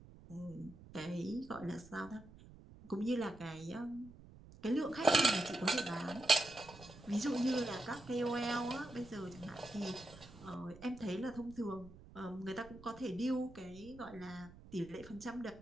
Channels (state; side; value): noise; right; rumble, 19 dB below the sound